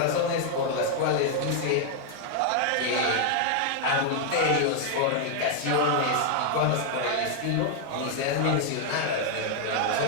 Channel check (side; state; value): both; different; correlation 0.00